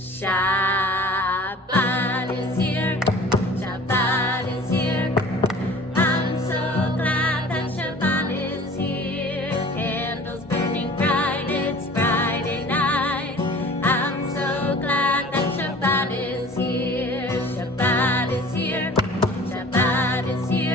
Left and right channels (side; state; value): both; normal; correlation 0.45